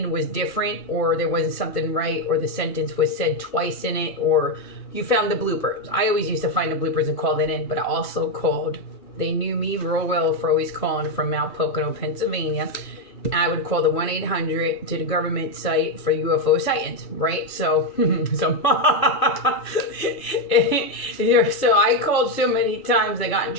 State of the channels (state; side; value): late; right; 2.6 ms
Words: was different, or there wasn't something right, or the sentence was said twice in it, or you found the bloopers. I always used to find the bloopers and call that in, but I also called. They knew me real well for always calling from Mount Pocono, Pennsylvania. I would call the 1-800 to the government site for UFO sightings, right? So, so I called so many times I got in